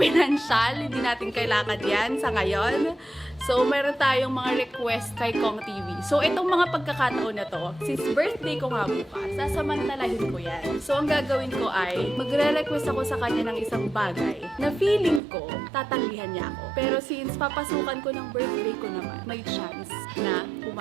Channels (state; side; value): drops out; left; at 15.2 s